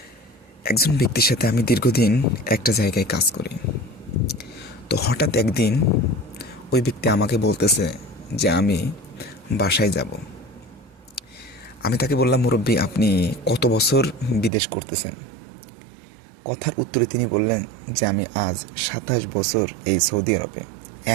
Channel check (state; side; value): drops out; left; at 14.5 s